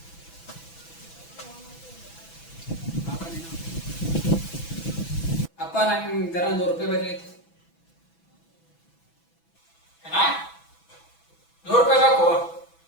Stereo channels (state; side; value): late; right; 6.1 ms